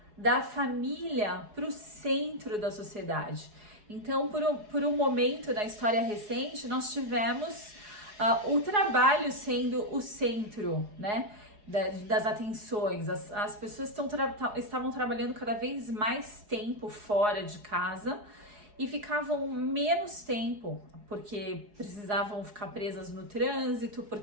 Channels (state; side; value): late; left; 4.8 ms